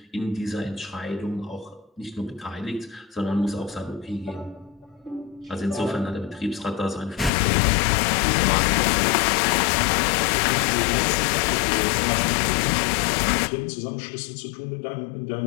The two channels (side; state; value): right; drops out; at 7.3 s